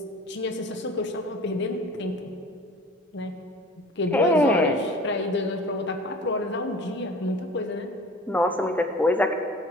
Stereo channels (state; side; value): normal; both; correlation 0.43